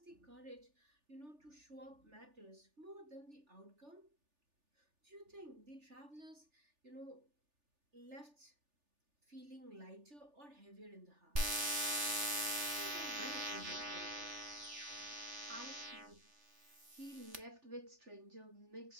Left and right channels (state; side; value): late; left; 3.4 ms